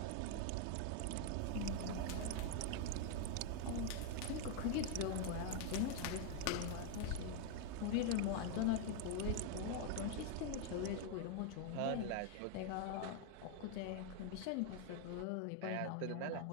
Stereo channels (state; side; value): different; both; correlation 0.00